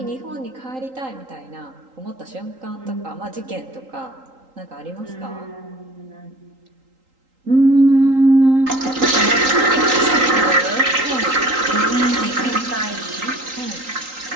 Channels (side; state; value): left; late; 3.8 ms